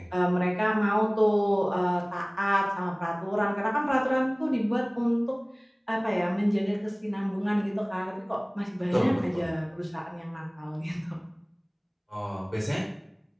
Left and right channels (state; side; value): identical; both; correlation 1.00